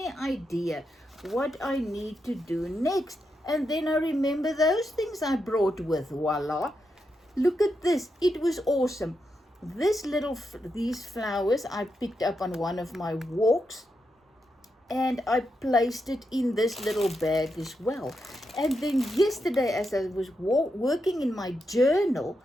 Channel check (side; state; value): both; normal; correlation 0.85